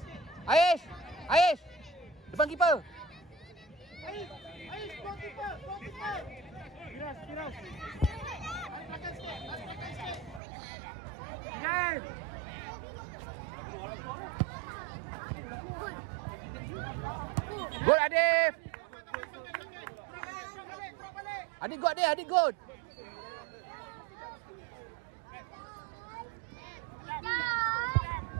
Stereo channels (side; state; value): left; drops out; at 10.4 s